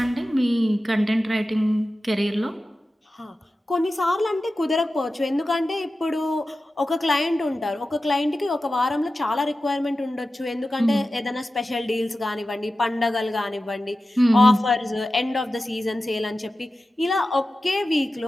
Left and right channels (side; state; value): both; normal; correlation 0.94